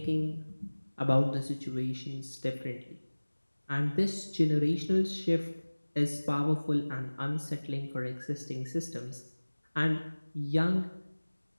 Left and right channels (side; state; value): both; inverted; correlation -1.00